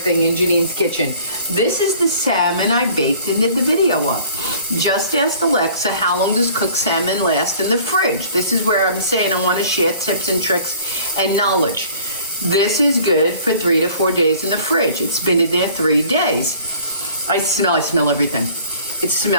in Janine's kitchen. This is the salmon I baked and did the video of. Just asked Alexa, how long does cooked salmon last in the fridge? This is where I'm saying I want to share tips and tricks and knowledge. This is good for 3 to 4 days in the fridge. It's been in there 3 days. I smell everything. It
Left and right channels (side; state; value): both; inverted; correlation -0.51